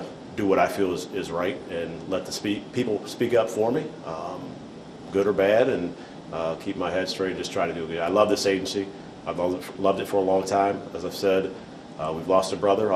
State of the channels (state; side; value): identical; both; correlation 1.00